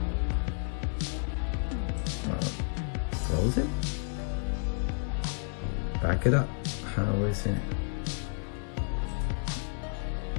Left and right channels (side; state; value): right; silent; 57 dB below the other